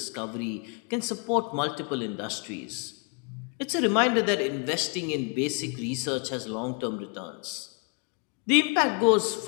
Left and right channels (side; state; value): right; quieter; 35.4 dB